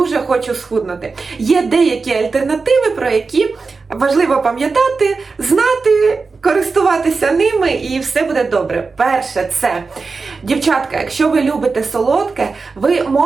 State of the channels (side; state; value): left; quieter; 4.3 dB